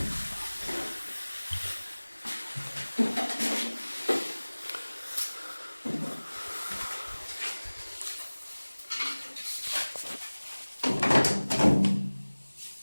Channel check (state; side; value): inverted; both; correlation -1.00